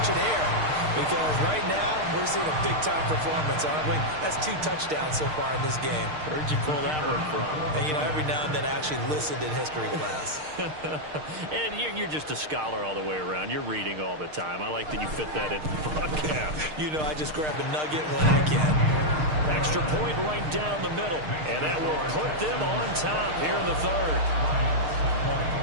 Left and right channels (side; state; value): left; late; 6.5 ms